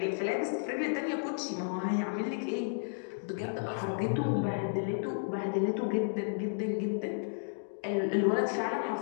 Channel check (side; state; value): right; silent; digital silence